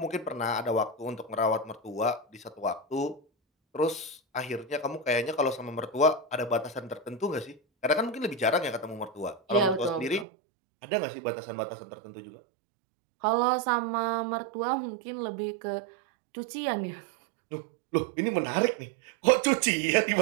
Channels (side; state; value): left; drops out; at 10.2 s